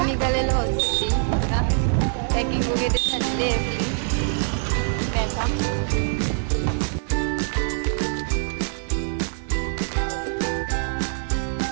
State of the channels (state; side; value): silent; left; 63 dB below the other